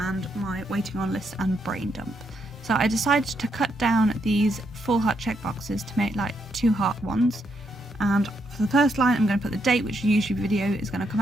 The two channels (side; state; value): both; normal; correlation 0.78